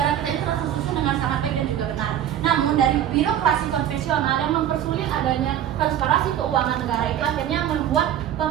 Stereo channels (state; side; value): quieter; left; 10.8 dB